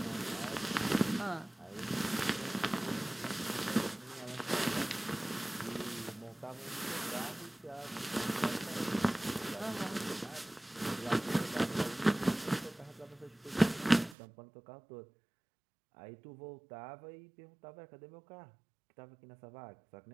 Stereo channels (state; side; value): drops out; left; at 14.2 s